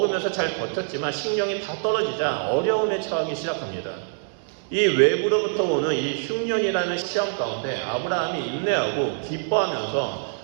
잘 버텼지만 식량이 다 떨어지자 어려움에 처하기 시작합니다. 이 외부로부터 오는 이 흉년이라는 시험 가운데 아브라함이 인내하고 기뻐하면서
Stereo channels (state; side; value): silent; left; digital silence